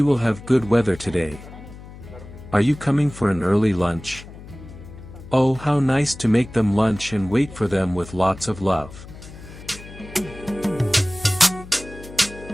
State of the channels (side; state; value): left; noise; hum, 16 dB below the sound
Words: will have good weather today. Are you coming for an early lunch? Oh, how nice to make them lunch and wait for them with lots of love.